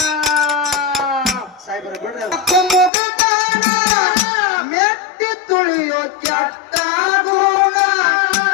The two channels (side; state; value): right; drops out; at 2.9 s